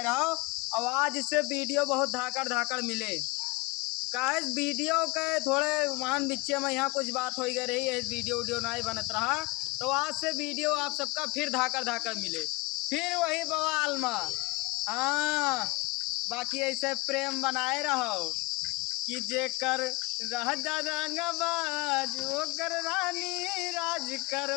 रहो। और आज इससे वीडियो बहुत धाकड़ धाकड़ मिले कहे वीडियो के थोड़े मान बिच्चे में यहाँ कुछ बात हो गई रही है, वीडियो वीडियो नहीं बनत रहा। तो आज से वीडियो आप सबका फिर धाकड़ धाकड़ मिले, फिर वही बवाल में। हाँ, बाकी ऐसे प्रेम बनाए रहो कि जेकर रह रंगबाज ओकर रानी राज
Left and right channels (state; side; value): quieter; right; 24.3 dB